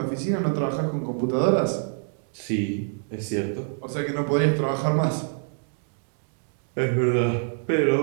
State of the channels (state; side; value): silent; left; digital silence